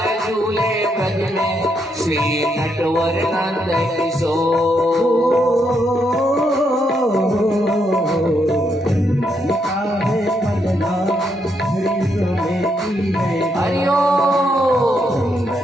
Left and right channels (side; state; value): both; normal; correlation 0.78